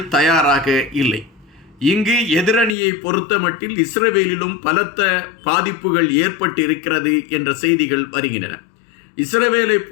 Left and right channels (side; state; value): right; drops out; at 2.8 s